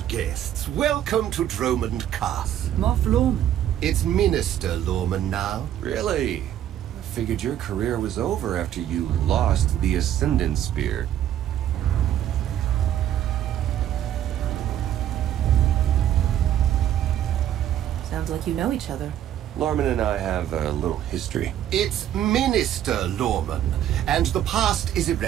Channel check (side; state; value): left; quieter; 11.2 dB